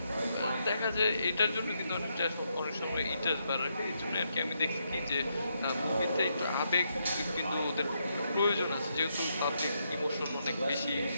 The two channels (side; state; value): both; inverted; correlation -0.79